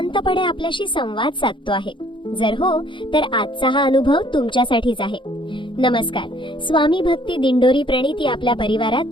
आपल्याशी संवाद साधतो आहे. जर हो, तर आजचा हा अनुभव तुमच्यासाठीच आहे. नमस्कार, स्वामी भक्ती दिंडोरी प्रणिती आपल्या परिवारात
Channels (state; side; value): late; right; 0.24 ms